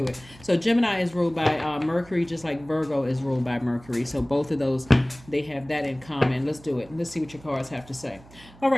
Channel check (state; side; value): noise; right; hum, 23 dB below the sound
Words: it. So Gemini is ruled by Mercury, just like Virgo is ruled by Mercury. So both of those, they have that in common. Let's do it. Let's see what your cards have to say. All